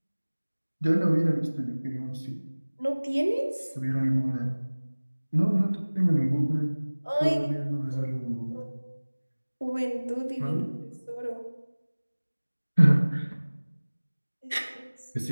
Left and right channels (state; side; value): inverted; both; correlation -1.00